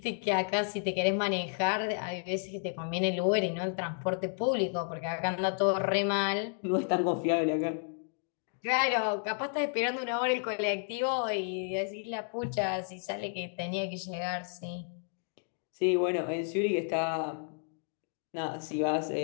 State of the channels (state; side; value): silent; right; 56 dB below the other